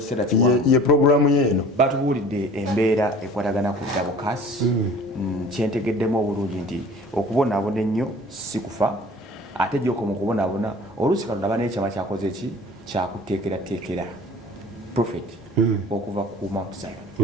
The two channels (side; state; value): both; normal; correlation 0.46